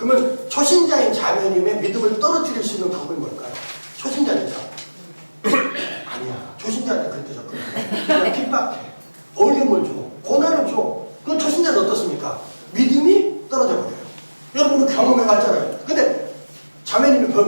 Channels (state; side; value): inverted; both; correlation -1.00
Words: 초신자인 자매님의 믿음을 떨어뜨릴 수 있는 방법이 뭘까요? 초신자니까. 아니야. 초신자한테 그렇게 접근해. 그냥 핍박해. 어려움을 줘. 고난을 줘. 그럼 초신자는 어떻습니까? 믿음이 떨어져 버려요. 여러분 경험해봤잖아요. 근데 자매님이